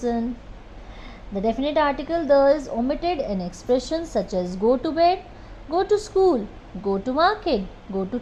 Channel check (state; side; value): identical; both; correlation 1.00